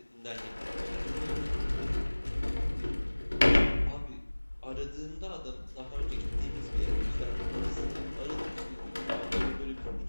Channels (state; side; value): inverted; both; correlation -1.00